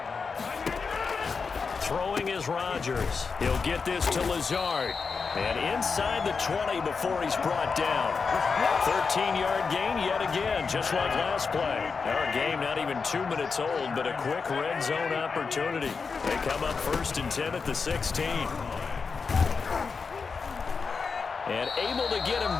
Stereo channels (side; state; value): right; quieter; 5.1 dB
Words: Throwing is Rodgers. He'll get this to Lazard. And inside the 20 before he's brought down. 13-yard gain yet again, just like last play. Our game not even 2 minutes old, but a quick red zone opportunity. They come up 1st and 10 at the 16. And able to get him